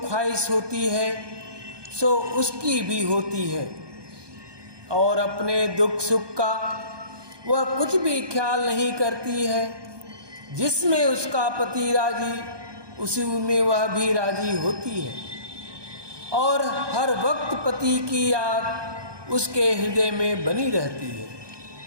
ख्वाहिश होती है सो उसकी भी होती है, और अपने दुख सुख का वह कुछ भी ख्याल नहीं करती है। जिसमें उसका पति राजी उसी में वह भी राजी होती है, और हर वक्त पति की याद उसके हृदय में बनी रहती है।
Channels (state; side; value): late; left; 1.2 ms